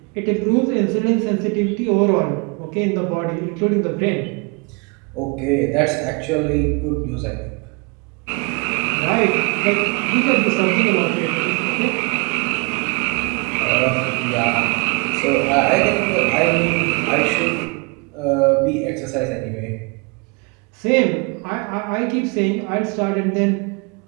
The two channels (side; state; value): left; quieter; 30.7 dB